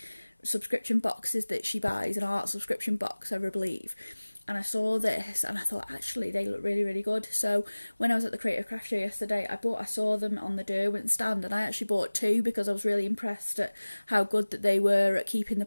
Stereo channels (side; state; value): both; inverted; correlation -1.00